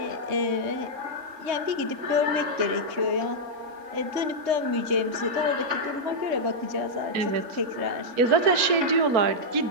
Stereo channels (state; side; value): late; left; 4.4 ms